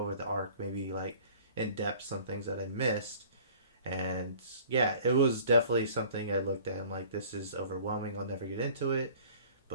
the arc, maybe like in depth some things that I missed. And yeah, it was definitely something I looked at and like, this is overwhelming. I'll never get into it.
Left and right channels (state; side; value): inverted; both; correlation -0.49